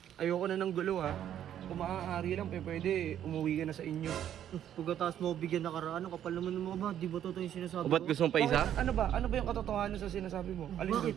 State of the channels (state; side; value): quieter; left; 10.5 dB